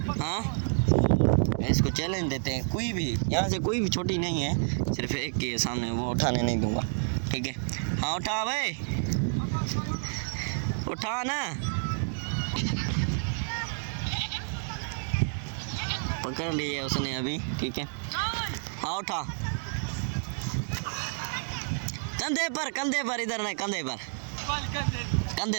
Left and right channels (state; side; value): silent; left; digital silence